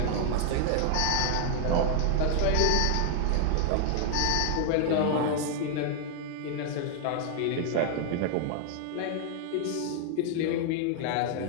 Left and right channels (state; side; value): different; both; correlation 0.00